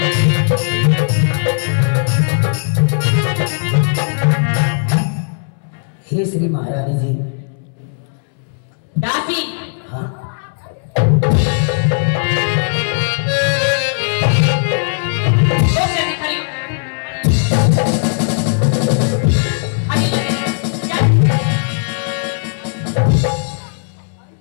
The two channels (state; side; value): silent; right; 66 dB below the other